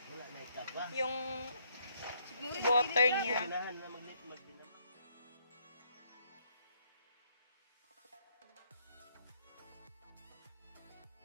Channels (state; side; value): inverted; both; correlation -0.72